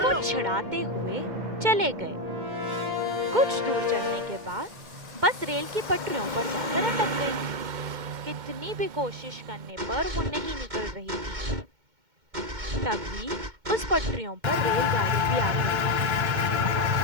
छिड़ाते हुए चले गए। कुछ दूर चलने के बाद बस रेल की पटरियों पर जाकर अटक गई। कितनी भी कोशिश करने पर वो नहीं निकल रही थी। तभी उस पटरियों पर रेलगाड़ी भी आ गई।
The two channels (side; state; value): left; late; 2.1 ms